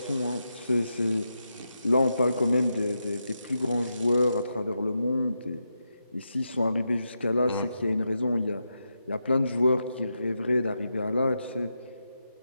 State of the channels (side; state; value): both; inverted; correlation -0.86